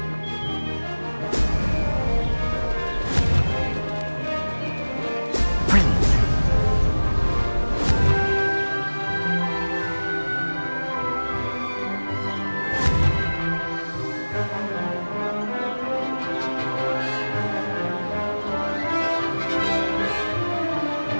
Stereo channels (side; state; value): both; inverted; correlation -1.00